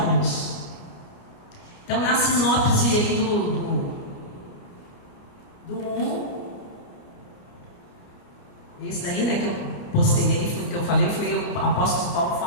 Então, na sinopse aí do 1, esse daí, que eu postei aí, foi o que eu falei, foi o apóstolo Paulo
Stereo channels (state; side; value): late; right; 29 ms